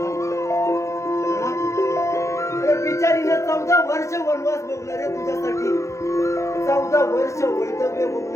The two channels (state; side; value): late; right; 0.14 ms